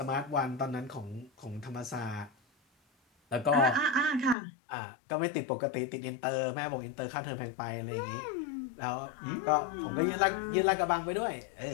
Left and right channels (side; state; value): right; drops out; at 4.4 s